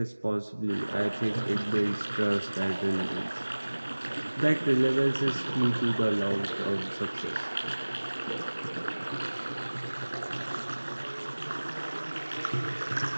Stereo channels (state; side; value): inverted; both; correlation -1.00